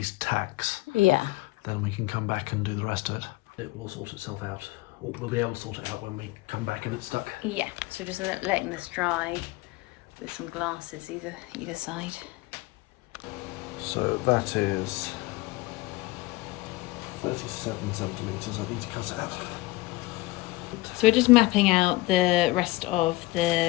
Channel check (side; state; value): right; quieter; 20.4 dB